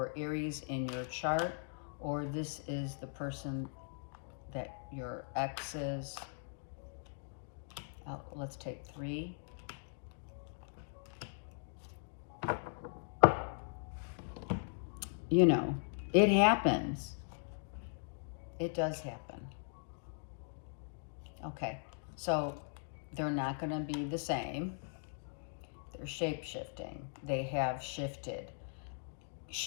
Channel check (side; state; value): right; silent; digital silence